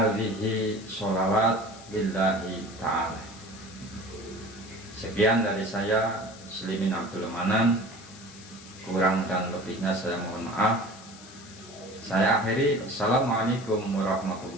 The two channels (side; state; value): left; noise; hiss, 19 dB below the sound